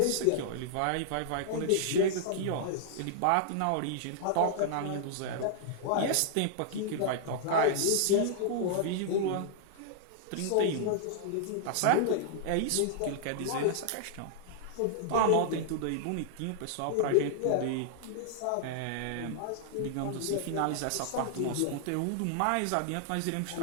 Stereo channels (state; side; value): different; both; correlation -0.01